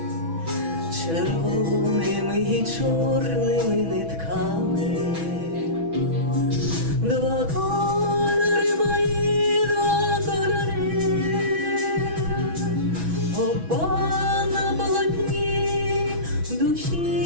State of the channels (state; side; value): late; left; 6.1 ms